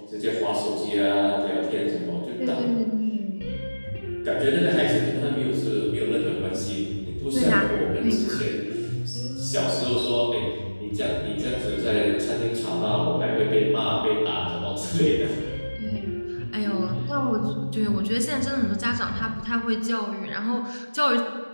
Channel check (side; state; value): both; inverted; correlation -1.00